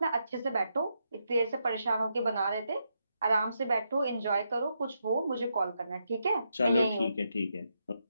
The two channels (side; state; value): both; inverted; correlation -0.81